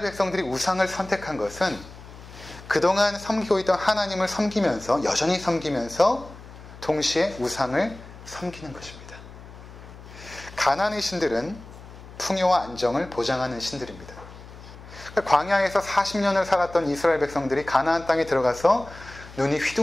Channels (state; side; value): noise; left; hum, 17 dB below the sound